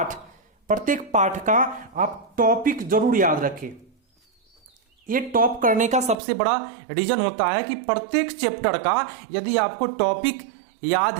प्रत्येक पाठ का आप टॉपिक जरूर याद रखें। ये टॉप करने का सबसे बड़ा रीजन होता है कि प्रत्येक चैप्टर का यदि आपको टॉपिक याद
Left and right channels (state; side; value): drops out; left; at 6.2 s